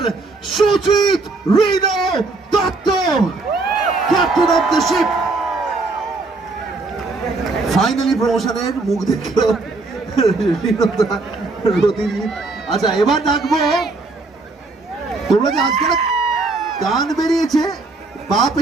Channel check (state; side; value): quieter; left; 3.5 dB